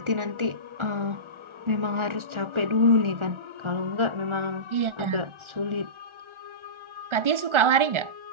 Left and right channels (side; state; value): left; late; 1.4 ms